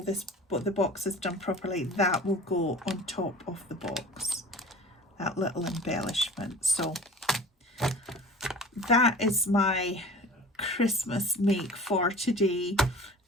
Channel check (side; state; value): both; normal; correlation 0.41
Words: this, the boxes done properly, that will go on top of the box, that little embellishment. So that is my Christmas make for today.